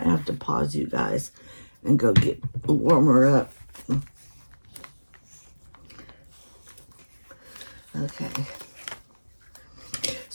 have to pause you guys and go get warmer up. Okay.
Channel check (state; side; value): inverted; both; correlation -1.00